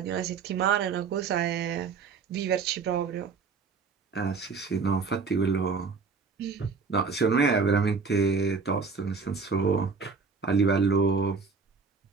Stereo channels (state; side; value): quieter; left; 5.0 dB